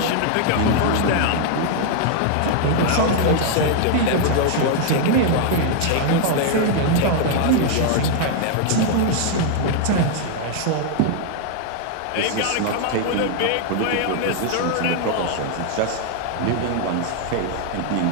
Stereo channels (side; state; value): both; different; correlation 0.00